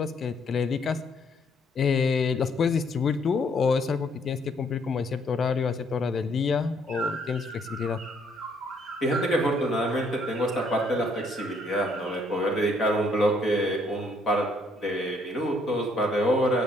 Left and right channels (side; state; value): both; normal; correlation 0.67